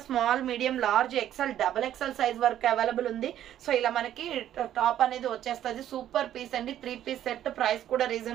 Small, medium, large, XL, double XL size వరకు అవైలబుల్ ఉంది. సో ఇలా మనకి టాప్ అనేది వచ్చేస్తుంది. సూపర్ పీస్ అండి. 3 పీస్ సెట్. ప్రైస్ కూడా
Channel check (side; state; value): left; quieter; 11.5 dB